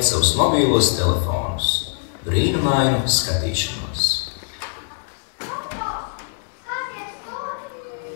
savus mobīlos telefonus, brīnumainu skatīšanos.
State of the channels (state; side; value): silent; right; digital silence